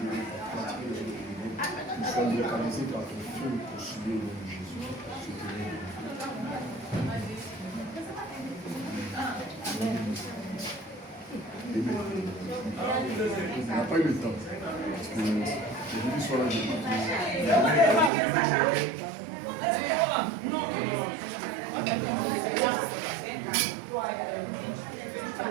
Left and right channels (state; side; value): drops out; left; at 18.1 s